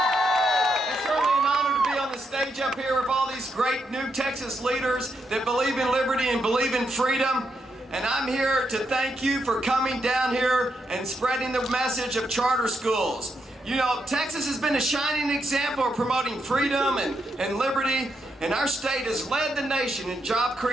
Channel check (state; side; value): normal; both; correlation 0.81